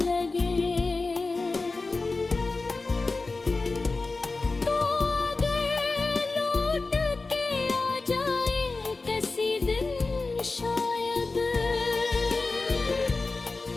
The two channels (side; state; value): right; quieter; 3.7 dB